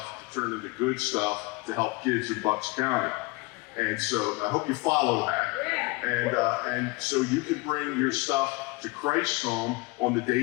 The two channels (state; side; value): quieter; right; 25.1 dB